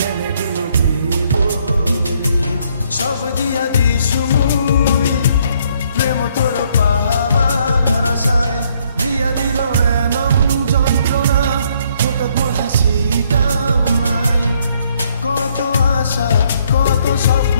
দিল বলি সব দিয়া দিছু মুই প্রেম তোর পাহাবার আশায় দিয়া দিল এনম যন্ত্রণা হঠাৎ মোর হাসিটাও নাই কত আশা কত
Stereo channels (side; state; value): both; inverted; correlation -0.68